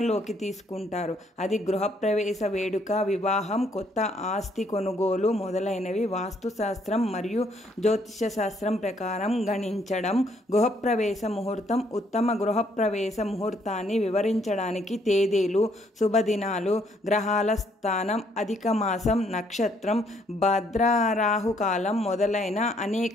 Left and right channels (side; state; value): both; normal; correlation 0.68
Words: తీసుకుంటారు. అది గృహప్రవేశ వేడుక, వివాహం, కొత్త ఆస్తి కొనుగోలు మొదలైనవి వాస్తుశాస్త్రం మరియు జ్యోతిష శాస్త్రం ప్రకారం గణించడం. గృహప్రవేశ ముహూర్తం ఉత్తమ గృహప్రవేశ ముహూర్తాన్ని వివరించడానికి తేదీలు, శుభదినాలు, గ్రహాల స్థానం, అధిక మాసం, నక్షత్రం, భద్రరాహుకాలం మొదలైన